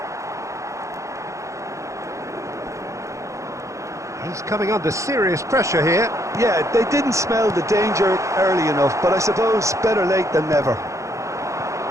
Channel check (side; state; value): left; late; 0.15 ms